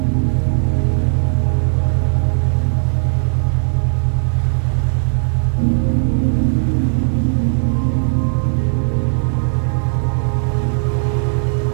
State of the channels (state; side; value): silent; left; digital silence